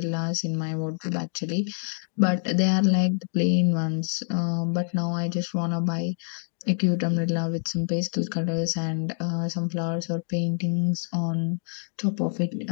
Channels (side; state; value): right; silent; digital silence